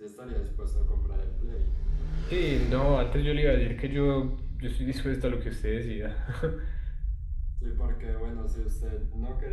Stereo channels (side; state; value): both; identical; correlation 1.00